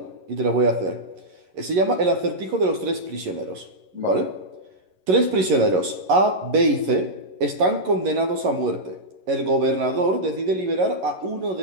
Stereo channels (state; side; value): late; left; 11 ms